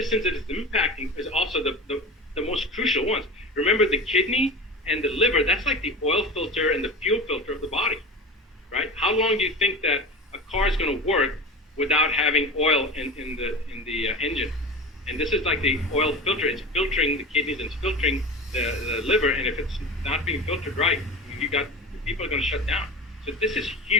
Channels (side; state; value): both; normal; correlation 0.30